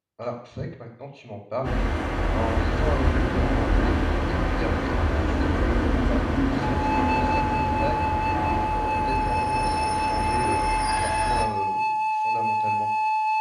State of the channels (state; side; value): identical; both; correlation 1.00